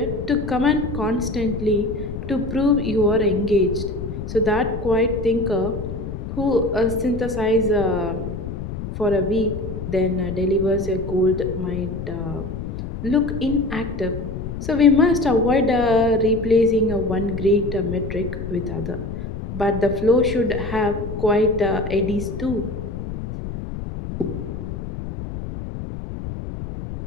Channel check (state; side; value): noise; left; rumble, 7 dB below the sound